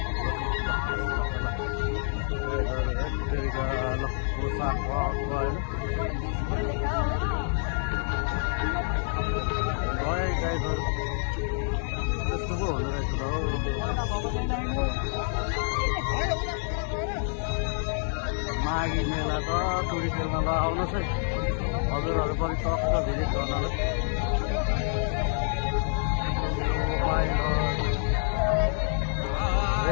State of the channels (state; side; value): silent; right; digital silence